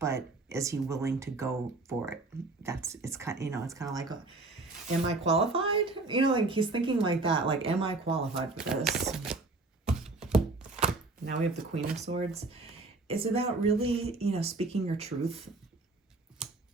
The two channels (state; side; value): quieter; left; 3.3 dB